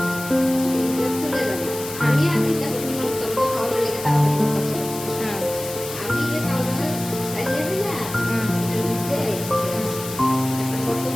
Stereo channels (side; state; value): left; noise; hiss, 11 dB below the sound